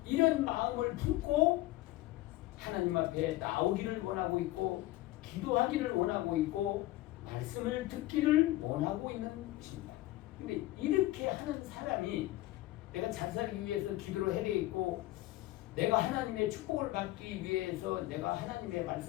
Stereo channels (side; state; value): right; quieter; 17.1 dB